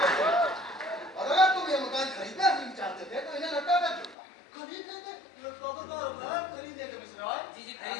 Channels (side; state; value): right; drops out; at 4.2 s